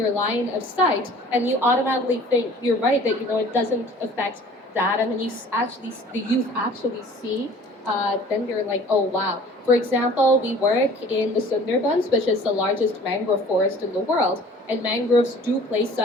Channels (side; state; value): both; normal; correlation 0.49